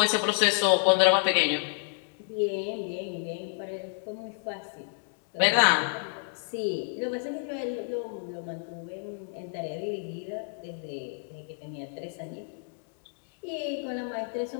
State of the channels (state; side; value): silent; right; digital silence